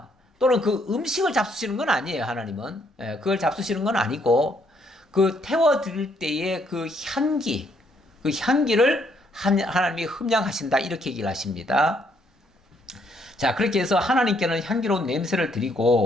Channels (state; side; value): normal; both; correlation 0.70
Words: 또는 그 음식을 잡수시는 건 아니에요. 하나님은 그걸 잡수시는 건 아니고, 그 태워드릴 때의 그 향기, 그 향기를 하나님이 흠양하신다, 이렇게 얘기를 하십니다. 자, 그렇게 해서 하나님께는 향기로운 냄새를